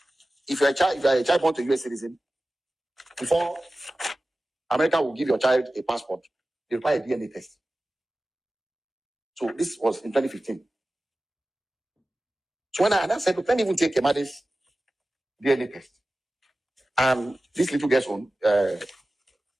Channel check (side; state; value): both; normal; correlation 0.96